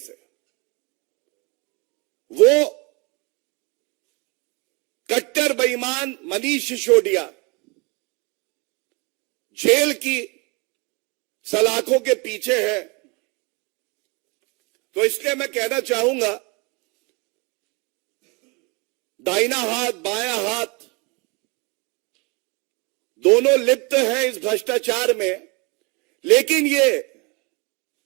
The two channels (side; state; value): left; quieter; 29.4 dB